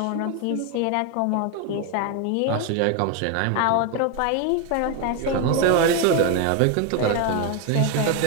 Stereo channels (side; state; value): both; different; correlation 0.02